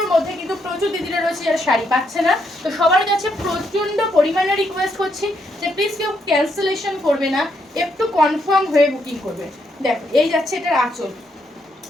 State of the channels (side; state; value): both; normal; correlation 0.77